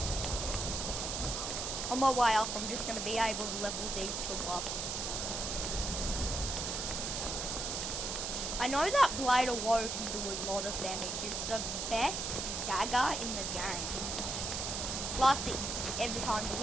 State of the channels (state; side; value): noise; right; hiss, 2 dB below the sound